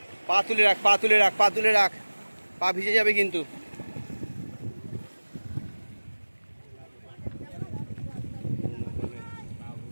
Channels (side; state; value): both; inverted; correlation -1.00